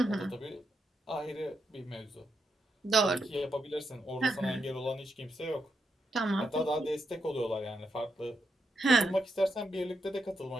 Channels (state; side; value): normal; both; correlation 0.83